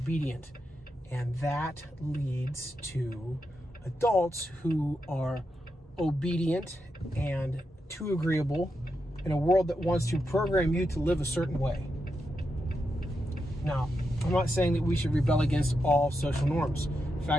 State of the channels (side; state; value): both; normal; correlation 0.85